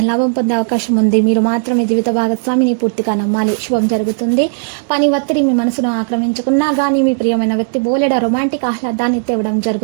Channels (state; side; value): silent; left; digital silence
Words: పొందే అవకాశం ఉంది. మీరు మాత్రం మీ జీవిత భాగస్వామిని పూర్తిగా నమ్మాలి. శుభం జరుగుతుంది. పని ఒత్తిడి మీ మనసును ఆక్రమించుకున్నా గానీ మీ ప్రియమైన వ్యక్తి బోలెడ రొమాంటిక్ ఆహ్లాదాన్ని తేవడం